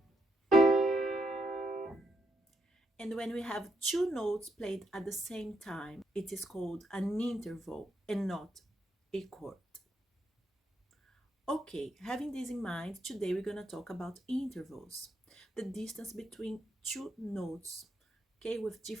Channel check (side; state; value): both; normal; correlation 0.78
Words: And when we have 2 notes played at the same time, it is called an interval and not a chord. Okay, having this in mind, today we're going to talk about intervals, the distance between 2 notes, okay, with